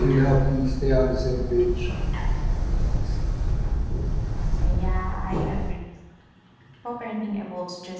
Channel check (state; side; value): identical; both; correlation 1.00